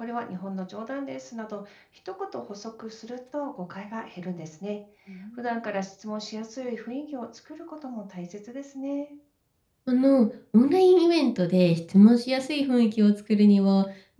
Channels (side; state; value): both; identical; correlation 1.00